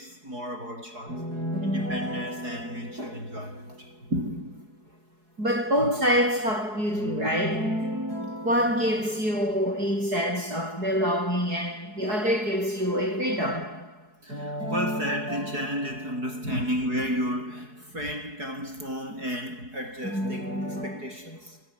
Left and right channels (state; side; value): late; left; 4.7 ms